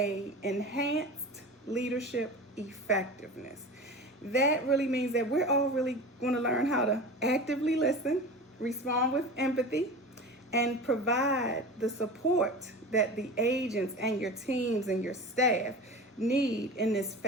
enhanced leadership effectiveness. That really means that we're all really going to learn how to actively listen, respond with empathy, and provide the support that the agents and your teams and your staff need in this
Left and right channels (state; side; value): normal; both; correlation 0.32